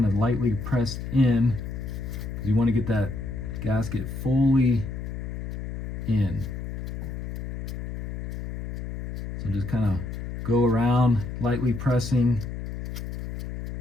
of lightly press in. You want to get that gasket fully in. So just kind of go around, lightly pressing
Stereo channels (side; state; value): left; noise; hum, 6 dB below the sound